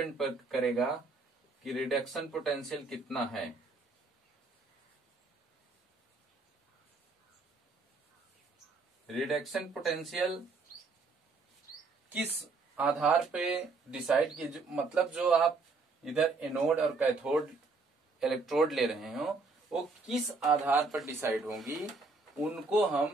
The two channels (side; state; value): left; quieter; 3.9 dB